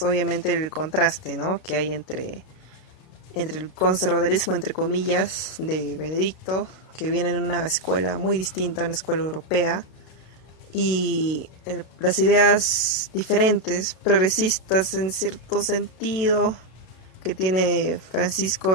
obviamente el contraste, ¿no?, que hay entre el conservadurismo, entre comillas, de Benedicto, que viene en una escuela muy distinta, una escuela europea, y las ideas diferentes, progresistas en cierto sentido, que tiene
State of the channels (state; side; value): late; right; 32 ms